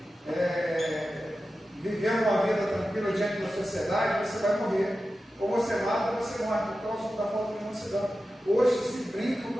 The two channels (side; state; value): both; normal; correlation 0.93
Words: vivendo uma vida tranquila diante da sociedade, você vai morrer. Ou você mata ou você morre por causa da falta de mansidão. Hoje se brinca